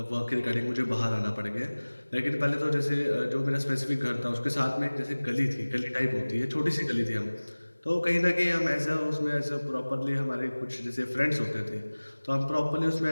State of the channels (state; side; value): inverted; both; correlation -1.00